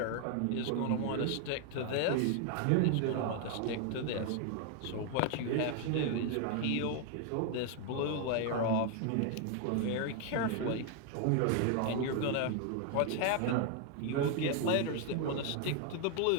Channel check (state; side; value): different; both; correlation 0.00